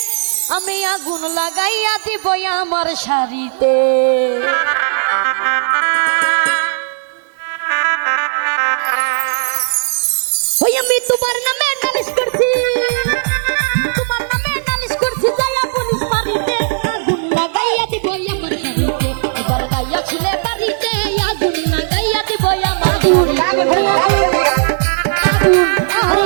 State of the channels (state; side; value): silent; left; digital silence